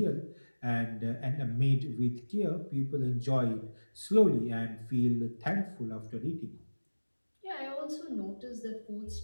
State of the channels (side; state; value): both; inverted; correlation -1.00